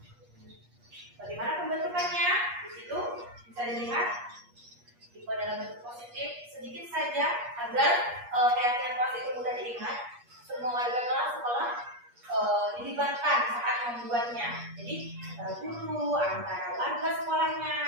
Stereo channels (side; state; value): left; late; 8.4 ms